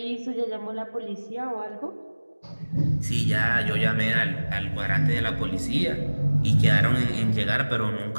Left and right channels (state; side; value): inverted; both; correlation -1.00